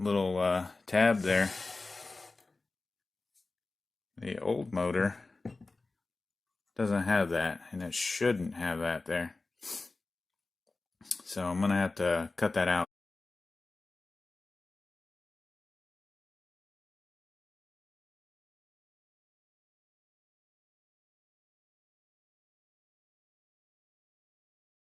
tab there. The old motor doesn't have that, and it shouldn't have that there. So I'm gonna have to cut that out.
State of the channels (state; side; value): quieter; right; 3.5 dB